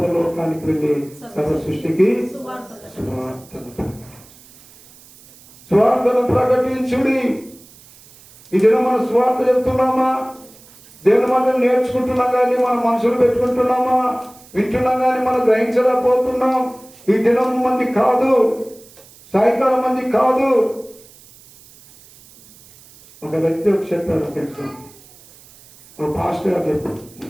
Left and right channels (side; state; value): right; noise; hiss, 24 dB below the sound